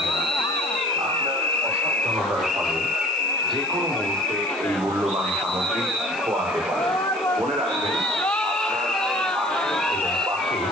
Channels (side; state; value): right; noise; hiss, 19 dB below the sound